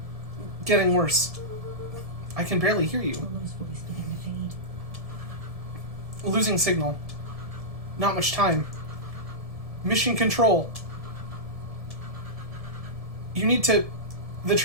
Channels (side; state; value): left; late; 1.7 ms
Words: Getting worse. I can barely hear you. Rollo's voice began to fade. Losing signal. Not much time. Mission control. You need to... The